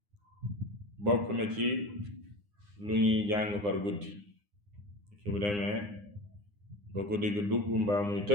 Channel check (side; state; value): left; late; 9.8 ms